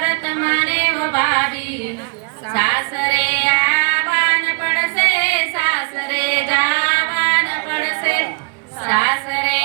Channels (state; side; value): quieter; left; 33.5 dB